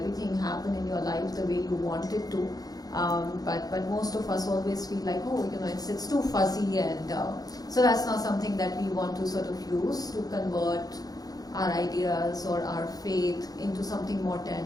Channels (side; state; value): right; late; 0.18 ms